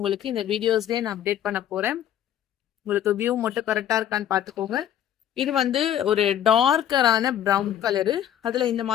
இந்த வீடியோஸ்லேயே நான் அப்டேட் பண்ண போகிறேன். உங்களுக்கு வியூ மட்டும் கரெக்டாக இருக்கான்னு பார்த்துக்கோங்க. இது வந்து ஒரு டார்க்கரான ப்ரௌன் கலரு, அதில் இந்த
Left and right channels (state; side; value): quieter; right; 10.6 dB